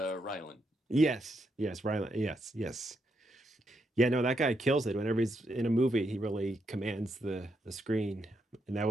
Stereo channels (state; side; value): normal; both; correlation 0.80